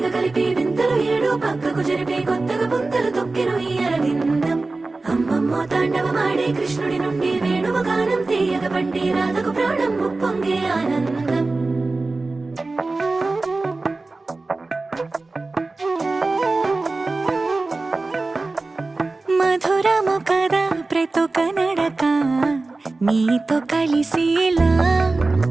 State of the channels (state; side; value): quieter; left; 3.4 dB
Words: కలిపి వింతలు ఏడు పక్కకు జరిపే కొత్తగా పుంతలు తొక్కెను ఈ అరవిందం అమ్మమ్మో తాండవమాడే కృష్ణుడి నుండి వేణువ గానం తీయగ పండి రాధకు ప్రాణం ముప్పొంగే ఆనందం మధురము కదా ప్రతొక నడక నీతో కలిసేలా